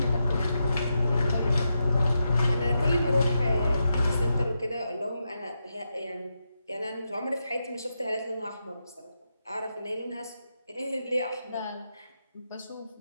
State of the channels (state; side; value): inverted; both; correlation -0.86